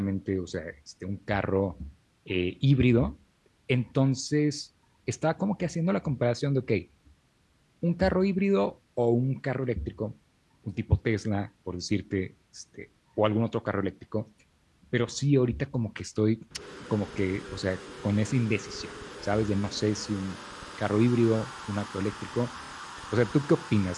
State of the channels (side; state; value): both; identical; correlation 1.00